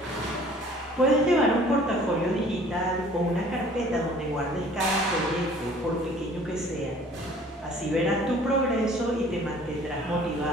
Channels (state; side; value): normal; both; correlation 0.52